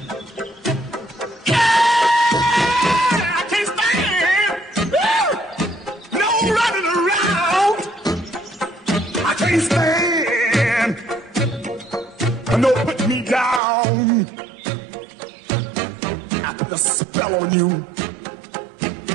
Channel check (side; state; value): left; drops out; at 13.6 s